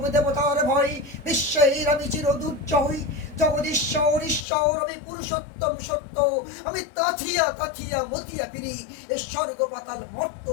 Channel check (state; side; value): drops out; right; at 4.5 s